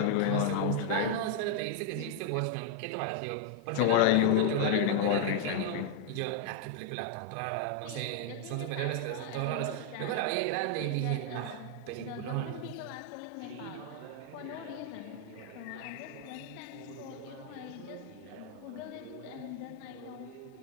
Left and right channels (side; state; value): both; different; correlation 0.00